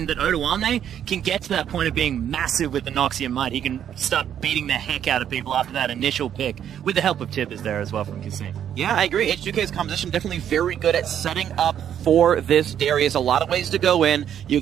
that Odoamne can get to that point of being massive with the Noxian Might. He can start beating the heck out of people after that initial pick, with the help of Tibbers there as well from Kassim. Yeah, I agree. H2k's composition definitely very good at setting up for this Darius. A lot of ways to go in. You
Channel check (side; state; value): left; quieter; 9.6 dB